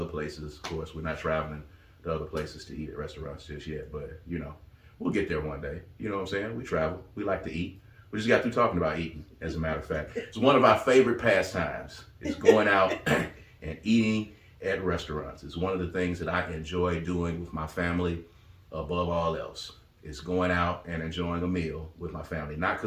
places, of course, we're not traveling to other places to eat at restaurants just yet, but you know, we'll get there one day. You know what I'm saying? We travel. We like to eat. We just got through talking about eating, as a matter of fact. It's one of our favorite pastimes. It's going out and eating at restaurants. It's one of the things that I enjoy doing with my family above all else. It's going out and enjoying a meal with my family. Not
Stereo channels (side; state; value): both; identical; correlation 1.00